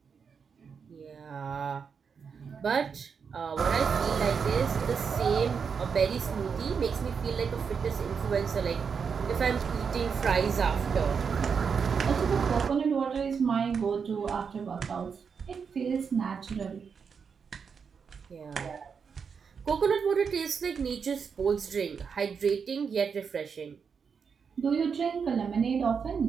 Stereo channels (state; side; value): quieter; left; 6.2 dB